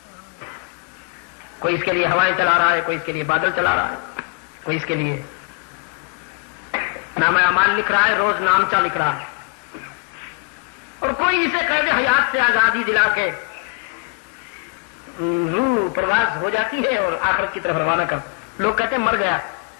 کوئی اس کے لیے ہوائیں چلا رہا ہے، کوئی اس کے لیے بادل چلا رہا ہے، کوئی اس کے لیے نام اعمال لکھ رہا ہے، روز نامچہ لکھ رہا ہے، اور کوئی اسے قید حیات سے آزادی دلا کے روح پرواز ہو جاتی ہے اور آخرت کی طرف روانہ کر. لوگ کہتے ہیں مر گیا،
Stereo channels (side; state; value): right; quieter; 33.0 dB